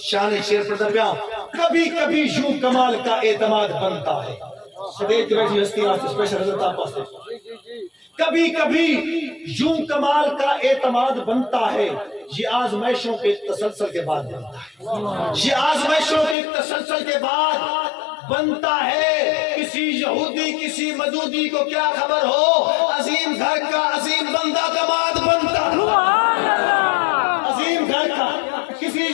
شان شیر پڑھتا پہ کبھی کبھی یوں کمال کا اعتماد بنتا ہے سدیج بیٹھی ہستی آج اسپیشل حضرت آپ پاس کبھی کبھی یوں کمال کا اعتماد بنتا ہے یہ آزمائشوں کے تسلسل کے بعد بنتا ہے یہ آزمائشوں کے تسلسل کے بعد بنتا ہے کسی یہودی کسی مجودی کو کیا خبر ہو عظیم گھر کا عظیم بندہ دماد بنتا ہے عظیم گھر کا کسی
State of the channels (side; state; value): right; drops out; at 16.4 s